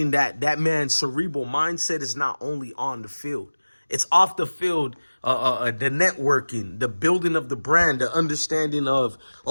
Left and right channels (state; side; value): inverted; both; correlation -1.00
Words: that that man's cerebral mindset is not only on the field. It's off the field, the networking, the building of the brand, the understanding of,